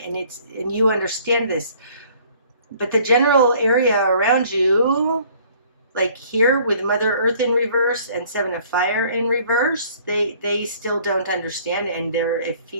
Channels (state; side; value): inverted; both; correlation -0.56